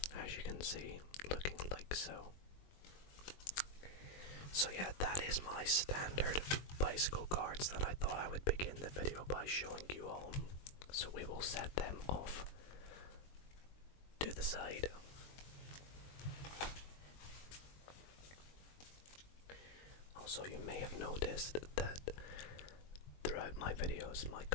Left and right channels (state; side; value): late; right; 21 ms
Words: as you can see, looking like so. So yeah, that is my standard bicycle cards that I thought I would begin the video by showing you all. So we will set them off to the side. Also, you may have noticed that throughout my videos, my